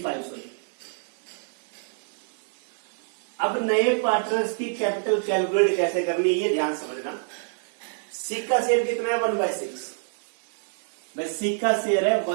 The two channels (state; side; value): silent; left; 59 dB below the other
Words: सॉरी। अब नए पार्टनर्स की कैपिटल कैलकुलेट कैसे करनी है, ये ध्यान समझना। सी का शेयर कितना है? 1/6। भाई सी का शेयर है